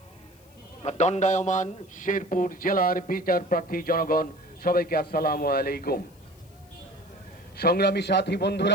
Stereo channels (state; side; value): noise; left; hiss, 30 dB below the sound